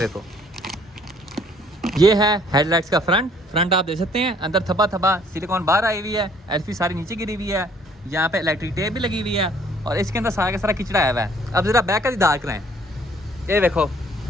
ये है हेडलाइट्स का फ्रंट आप देख सकते हैं। अंदर थब्बा सिलिकॉन बाहर आई हुई है, एलफी सारी नीचे गिरी हुई है। यहाँ पे इलेक्ट्रिक टेप भी लगी हुई है और इसके अंदर सारा का सारा किचड़ा आया हुआ है। अब जरा बैक का दाग कराएं, ये देखो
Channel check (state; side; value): normal; both; correlation 0.60